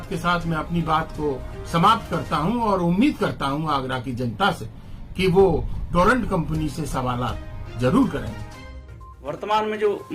के साथ मैं अपनी बात को समाप्त करता हूं और उम्मीद करता हूं आगरा की जनता से कि वो टोरेंट कंपनी से सवालात जरूर करेंगे। वर्तमान में जो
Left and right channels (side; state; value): both; identical; correlation 1.00